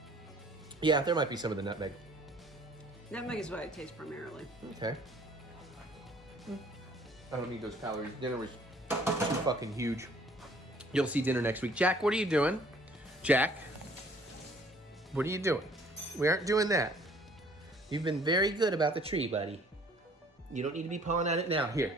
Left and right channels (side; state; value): both; normal; correlation 0.57